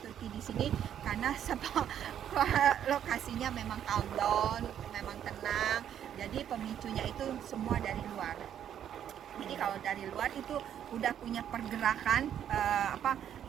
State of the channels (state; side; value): quieter; left; 9.7 dB